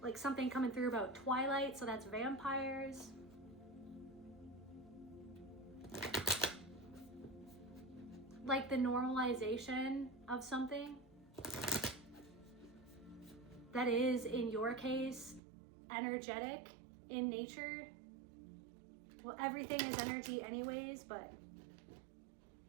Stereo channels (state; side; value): drops out; left; at 15.4 s